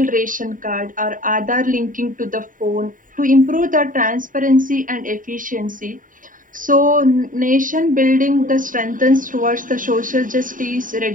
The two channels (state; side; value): late; left; 0.39 ms